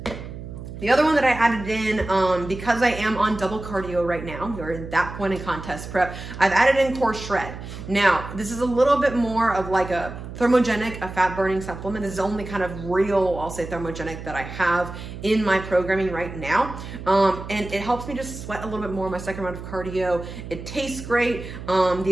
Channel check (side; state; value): right; noise; hum, 11 dB below the sound